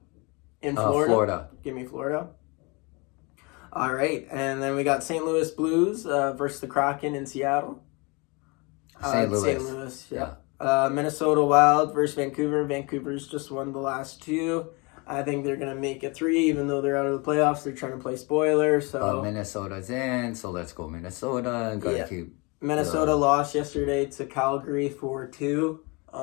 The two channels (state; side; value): quieter; right; 28.6 dB